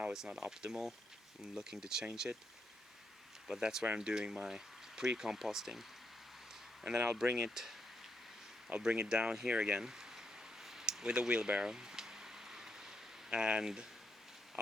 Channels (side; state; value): both; normal; correlation 0.80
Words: It's not optimal. I'm looking to change it, but that's where I'm doing my pre-composting. And then I'll bring it down here again with a wheelbarrow, and